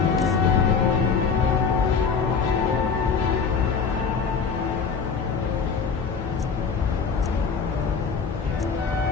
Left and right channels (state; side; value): quieter; right; 5.7 dB